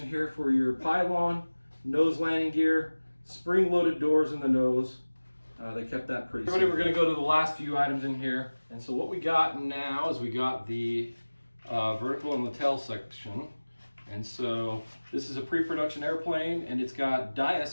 here for your pylon, nose landing gear, spring-loaded doors in the nose. They kept that pretty simple. We're going to go to the last few items in here. And so what we got now is we got the vertical and the tail section. And so this is a pre-production airplane, and it's got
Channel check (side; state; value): both; inverted; correlation -1.00